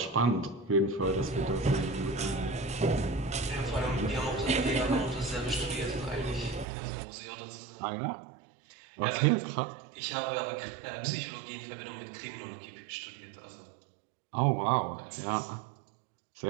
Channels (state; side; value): drops out; left; at 6.7 s